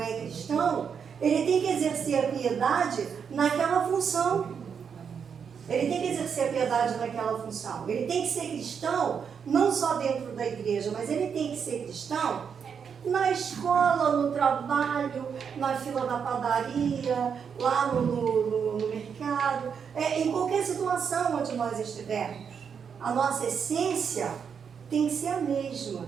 cristão, ele tem que exercer a piedade naquela função. Ele tem que exercer a piedade naquela função. Ele tem que ser cristão, não só dentro da igreja, mas ele tem que ser cristão na escola, no trabalho, na fila da padaria, lá no mercado, em qualquer situação onde nós estivermos. A nossa essência tem que ser a mesma,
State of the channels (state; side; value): quieter; left; 6.9 dB